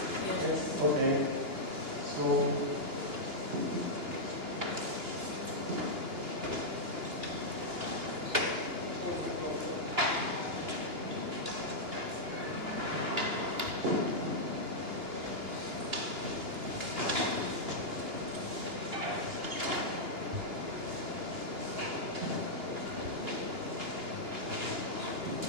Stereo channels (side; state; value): left; late; 2.9 ms